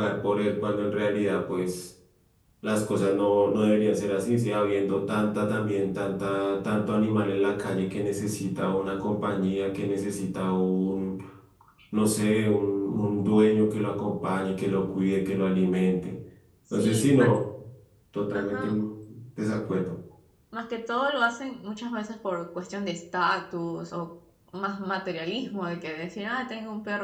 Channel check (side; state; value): both; identical; correlation 1.00